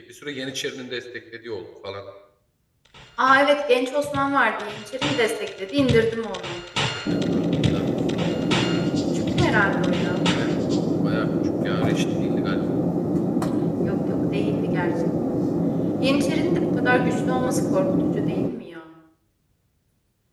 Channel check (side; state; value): both; identical; correlation 1.00